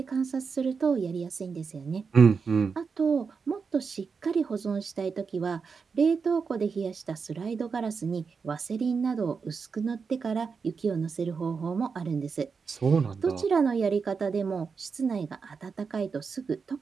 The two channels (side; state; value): left; quieter; 5.4 dB